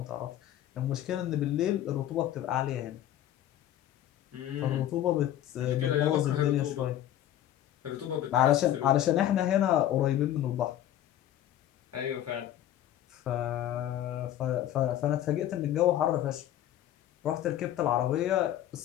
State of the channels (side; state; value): right; quieter; 12.1 dB